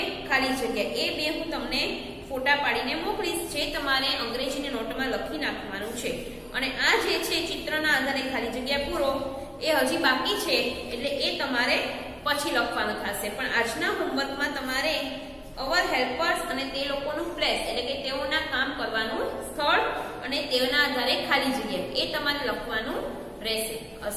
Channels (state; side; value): identical; both; correlation 1.00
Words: ખાલી જગ્યા એ બે હું તમને ફોટા પાડીને મોકલીશ, જે તમારે અંગ્રેજીની નોટમાં લખી નાખવાનું છે. અને આ જે છે ચિત્રના આધારે ખાલી જગ્યા પૂરો એ હજી બાકી છે, એટલે એ તમારે પછી લખવાનું થશે. પણ આજના હોમવર્કમાં તમારે અવર હેલ્પર્સ અને તે લોકોનું પ્લેસ એટલે કે તેઓના કામ કરવાનું સ્થળ અને તેઓના આધારે ખાલી જગ્યા એ તમારે લખવાનું રહેશે.